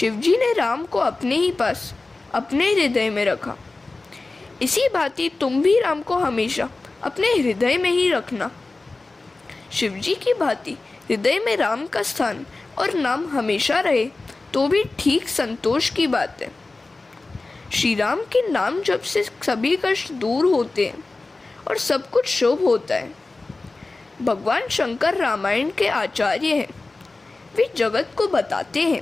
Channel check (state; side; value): quieter; right; 3.4 dB